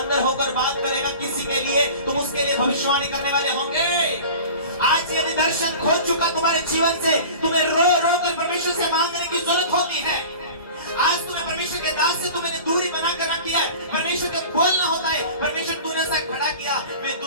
होकर बात करेगा किसी के लिए, तुम उसके लिए भविष्यवाणी करने वाले होंगे। आज यदि दर्शन खो चुका तुम्हारे जीवन से, तुम्हें रो रो कर परमेश्वर से मांगने की जरूरत होती है। आज तुम्हें परमेश्वर के दास से तुमने दूरी बनाकर रख दिया है। परमेश्वर का बोलना होता है, परमेश्वर तूने सा खड़ा किया, मैं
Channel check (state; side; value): inverted; both; correlation -0.39